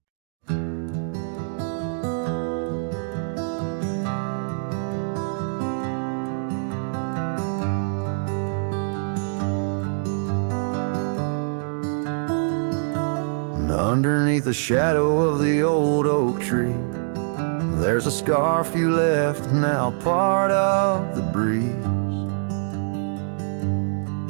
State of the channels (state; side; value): silent; left; digital silence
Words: Underneath the shadow of the old oak tree, there's a scarf you left, now part of the breeze.